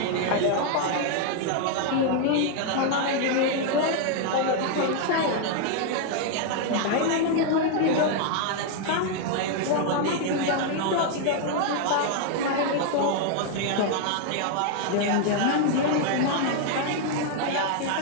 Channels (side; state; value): both; different; correlation 0.00